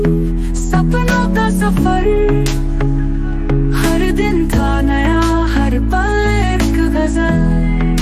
सपनों का सफर, हर दिन था नया हर पल एक गजल।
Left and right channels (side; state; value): both; identical; correlation 1.00